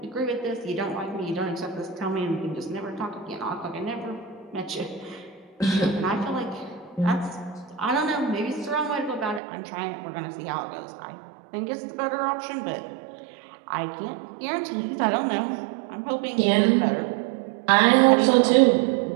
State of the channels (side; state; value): left; drops out; at 9.4 s